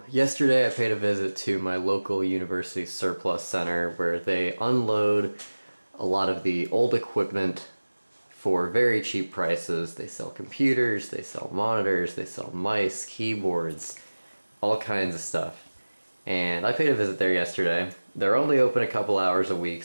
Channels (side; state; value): both; inverted; correlation -1.00